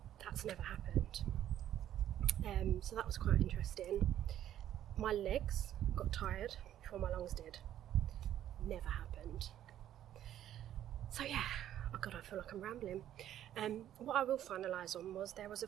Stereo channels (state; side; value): quieter; left; 11.5 dB